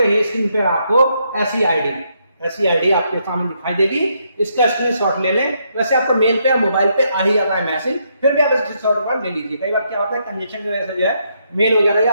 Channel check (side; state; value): both; inverted; correlation -0.76